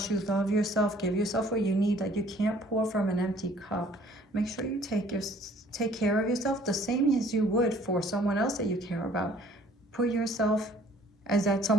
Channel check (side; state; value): both; normal; correlation 0.57